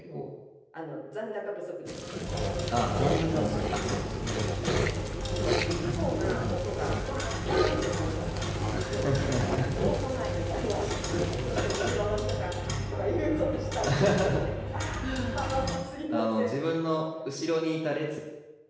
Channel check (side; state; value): both; identical; correlation 1.00